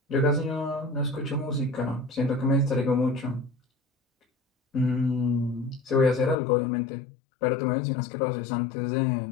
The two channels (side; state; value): right; drops out; at 6.4 s